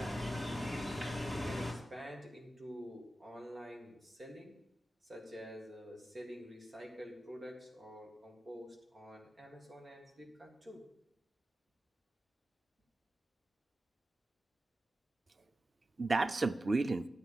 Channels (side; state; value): both; normal; correlation 0.93